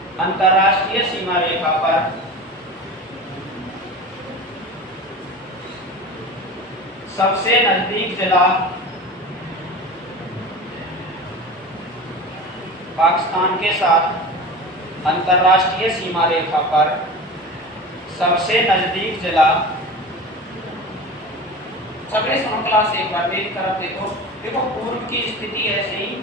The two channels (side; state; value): both; normal; correlation 0.32